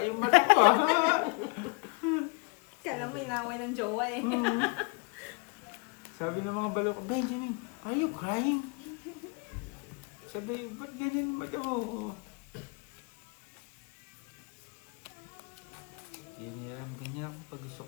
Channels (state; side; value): quieter; right; 32.4 dB